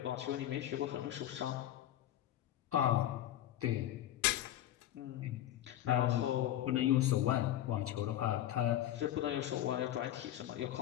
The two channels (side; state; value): right; quieter; 12.5 dB